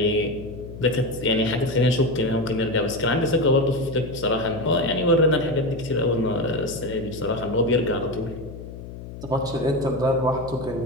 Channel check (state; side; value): noise; left; hum, 12 dB below the sound